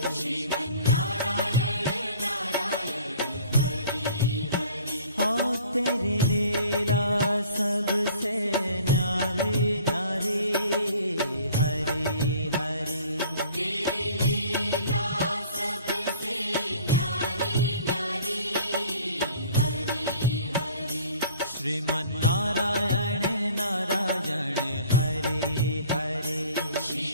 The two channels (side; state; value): both; inverted; correlation -0.50